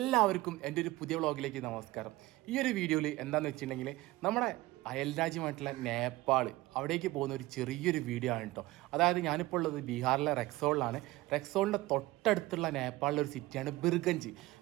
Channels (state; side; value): quieter; left; 18.8 dB